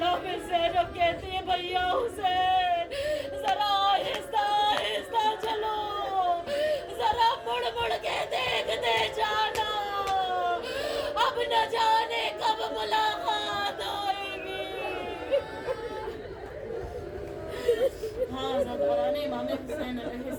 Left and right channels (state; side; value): identical; both; correlation 1.00